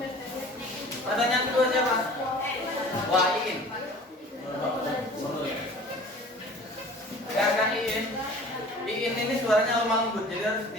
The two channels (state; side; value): normal; both; correlation 0.45